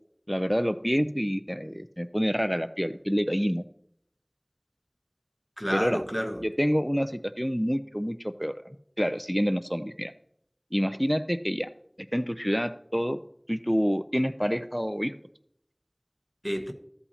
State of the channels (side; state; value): both; identical; correlation 1.00